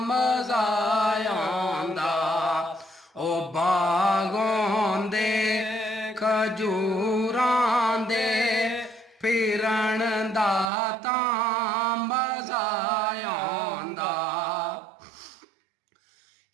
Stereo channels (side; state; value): left; drops out; at 10.7 s